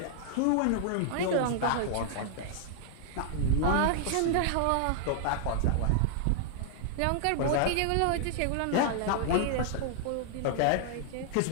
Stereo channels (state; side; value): different; both; correlation -0.01